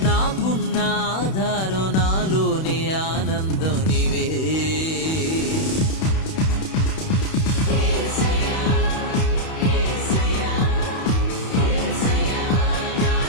నాకున్న ఆధారం నాలోనే ఆనందం నీవే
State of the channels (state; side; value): late; right; 31 ms